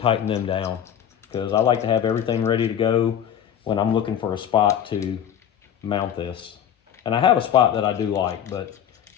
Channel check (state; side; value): quieter; right; 9.5 dB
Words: them down because I like to have everything ready to go when I'm looking for a spot to mount this. And I have a spot that I do like, but